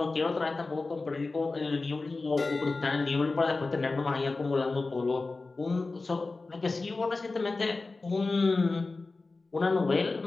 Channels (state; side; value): quieter; right; 3.6 dB